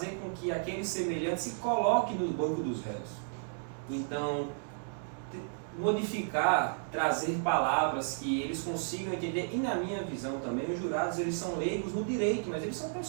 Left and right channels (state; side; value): silent; left; digital silence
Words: com que aquele semelhante se coloque no banco dos réus. Então, modificar, trazer palavras que eles consigam entender, e na minha visão também, os jurados eles são leigos no direito, mas eles são